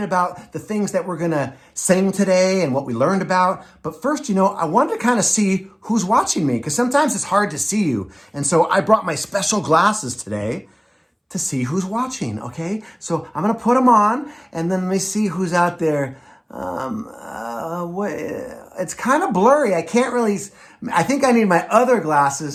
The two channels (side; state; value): both; identical; correlation 1.00